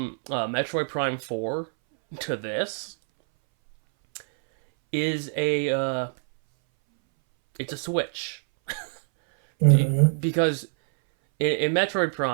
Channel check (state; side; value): silent; left; 61 dB below the other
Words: Metroid Prime 4 to this is a it's a switch. Hmm. Because in Metroid